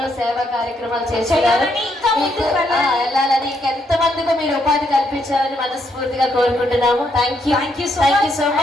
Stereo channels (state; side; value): normal; both; correlation 0.75